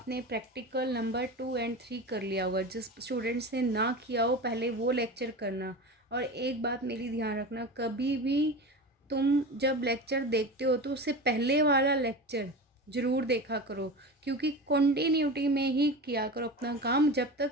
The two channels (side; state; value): both; normal; correlation 0.29